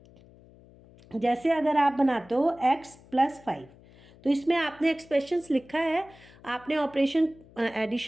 जैसे अगर आप बनाते हो x + 5, तो इसमें आपने एक्सप्रेशंस लिखा है, आपने ऑपरेशन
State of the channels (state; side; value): noise; left; hum, 24 dB below the sound